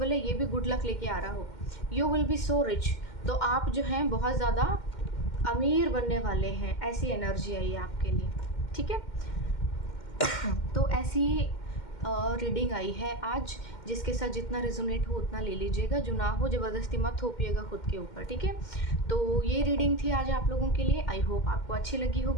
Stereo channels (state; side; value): late; right; 2.1 ms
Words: है ये भी गुड लक लेके आ रहा हो। You will be so rich, तो आप जो हैं बहुत ज़्यादा अमीर बनने वाले हैं, ऐसी एनर्जी आई है आपके लिए, ठीक है। तो ऐसी रीडिंग आई है आज, जिसके साथ जितना रेजोनेट हो उतना ले लीजिएगा, जो ना हो ज़बरदस्ती मत थोपिएगा खुद के ऊपर, ठीक है। तो ये रीडिंग थी आज आप लोगों के लिए। आई होप आपको अच्छी लगी